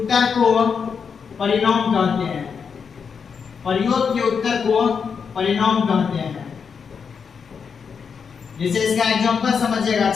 को परिणाम कहते हैं, प्रयोग के उत्तर को परिणाम कहते हैं। जैसे इसका एग्जांपल समझिएगा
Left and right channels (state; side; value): quieter; right; 6.2 dB